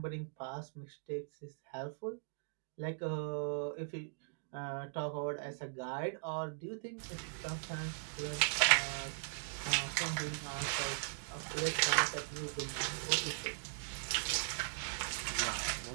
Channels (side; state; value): left; silent; digital silence